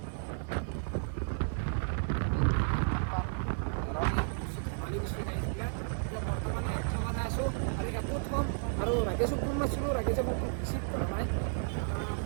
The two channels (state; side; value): silent; left; digital silence